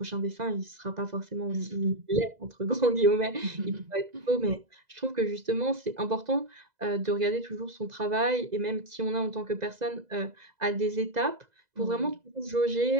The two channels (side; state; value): left; late; 2.0 ms